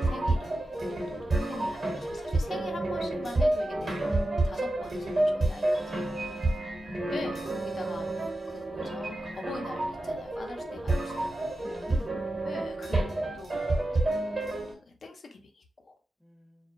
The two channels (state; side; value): normal; both; correlation 0.92